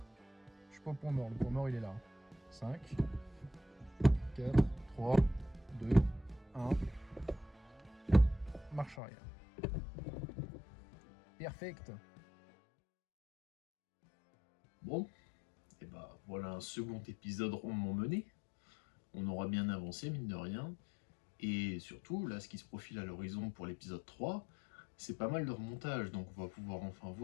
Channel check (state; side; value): drops out; right; at 9.0 s